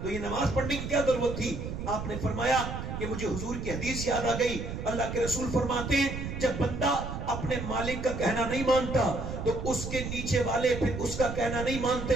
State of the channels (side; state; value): right; noise; rumble, 6 dB below the sound